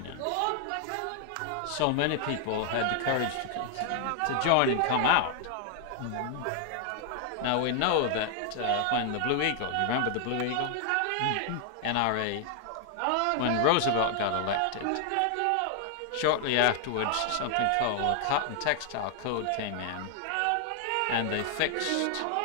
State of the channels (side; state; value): both; different; correlation 0.00